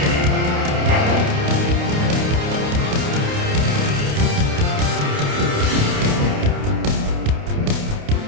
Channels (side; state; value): left; late; 28 ms